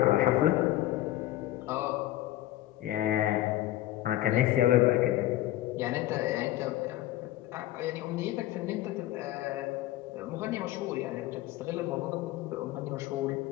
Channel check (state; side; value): quieter; right; 14.9 dB